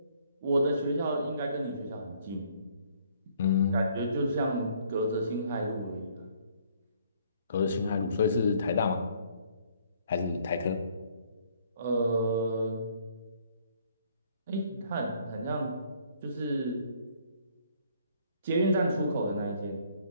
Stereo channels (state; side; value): inverted; both; correlation -0.63